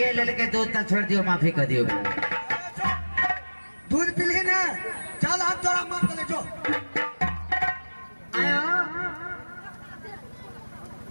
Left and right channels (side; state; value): both; inverted; correlation -1.00